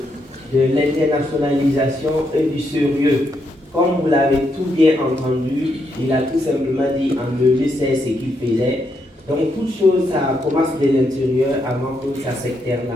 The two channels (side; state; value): both; normal; correlation 0.79